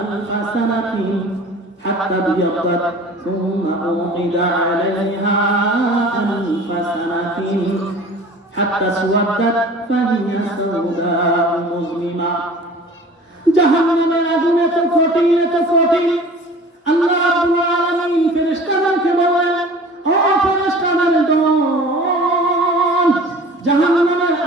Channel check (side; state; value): both; normal; correlation 0.43